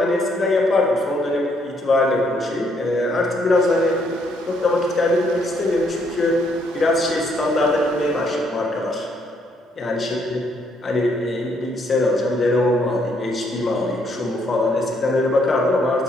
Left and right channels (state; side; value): normal; both; correlation 0.70